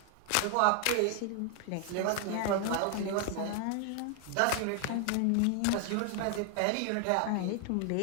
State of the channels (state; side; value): different; both; correlation 0.00